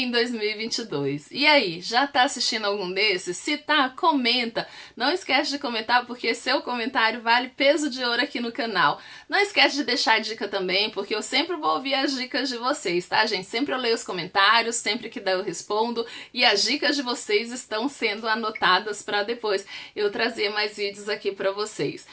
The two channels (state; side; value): identical; both; correlation 1.00